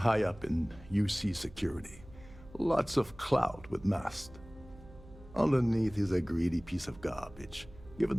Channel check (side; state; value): right; noise; hum, 20 dB below the sound